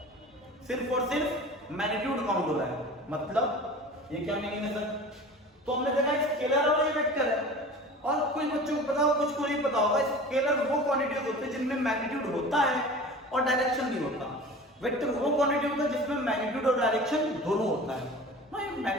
सिर्फ और सिर्फ मैग्नीट्यूड काउंट हो रहा है। मतलब ये क्या मीनिंग है सर? तो हमने देखा स्केलर और ये वेक्टर है, और कुछ बच्चों को पता होगा, कुछ को नहीं पता होगा। स्केलर वो क्वांटिटीज होते हैं जिनमें मैग्नीट्यूड होता है और डायरेक्शन नहीं होता। वेक्टर वो क्वांटिटी होता है जिसमें मैग्नीट्यूड और डायरेक्शन दोनों होता है।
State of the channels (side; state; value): both; normal; correlation 0.38